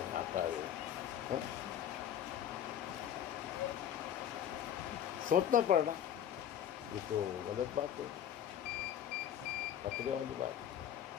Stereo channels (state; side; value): quieter; right; 10.0 dB